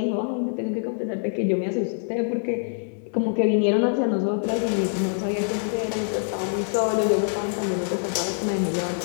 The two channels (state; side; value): silent; right; digital silence